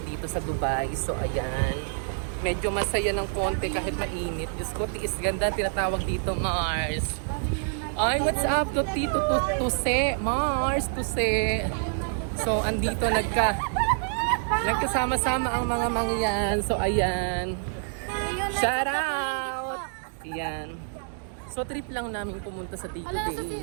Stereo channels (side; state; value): left; silent; digital silence